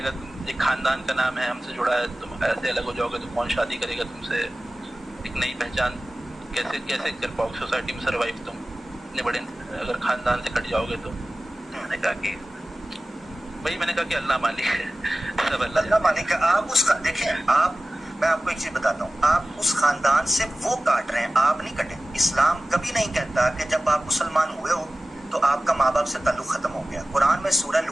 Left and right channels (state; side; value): normal; both; correlation 0.97